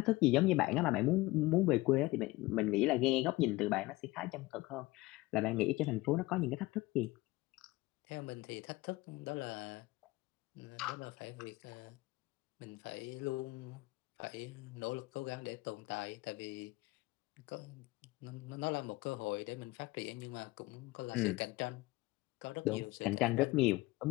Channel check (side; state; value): right; quieter; 20.3 dB